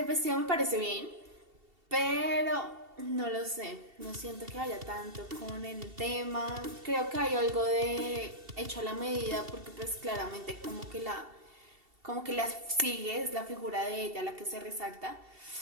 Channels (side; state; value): left; late; 2.7 ms